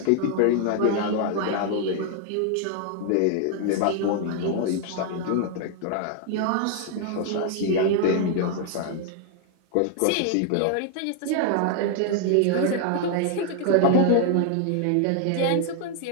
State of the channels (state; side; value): different; both; correlation 0.00